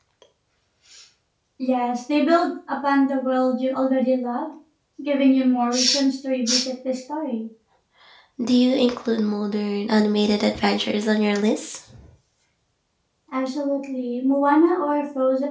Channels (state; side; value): identical; both; correlation 1.00